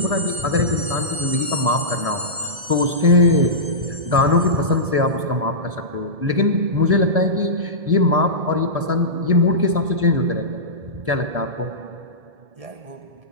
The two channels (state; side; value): late; left; 1.7 ms